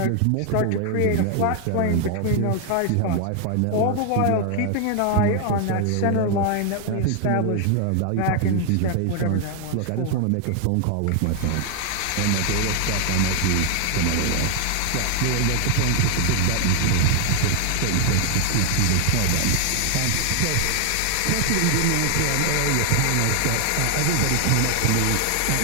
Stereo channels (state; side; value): different; both; correlation 0.00